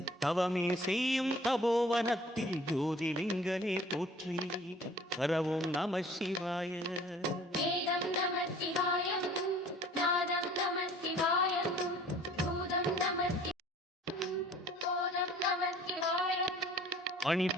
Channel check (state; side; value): normal; both; correlation 0.51